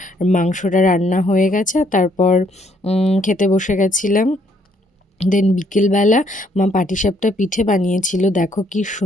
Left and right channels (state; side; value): normal; both; correlation 0.68